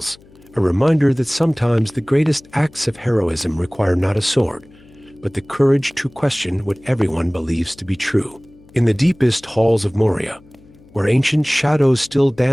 a reminder that sometimes the greatest acts of heroism require not a sword, but the courage to question what everyone believes to be true. In the deepest halls of Moria, where ancient shadows still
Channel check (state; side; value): noise; left; hum, 26 dB below the sound